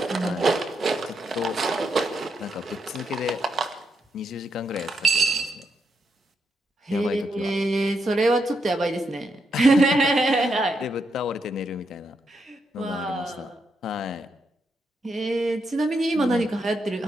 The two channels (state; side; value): normal; both; correlation 0.81